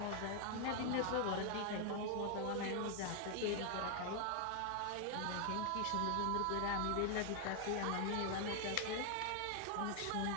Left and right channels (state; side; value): different; both; correlation 0.00